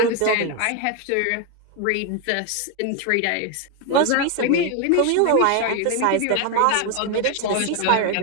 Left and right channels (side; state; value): both; different; correlation 0.01